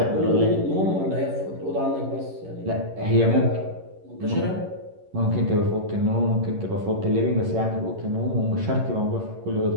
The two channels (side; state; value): left; late; 11 ms